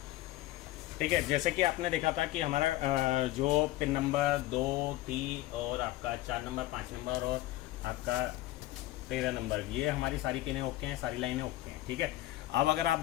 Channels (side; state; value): right; quieter; 16.4 dB